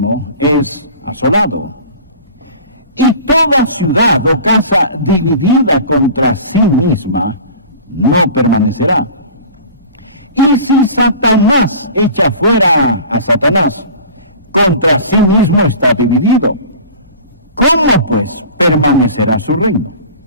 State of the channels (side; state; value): both; inverted; correlation -0.41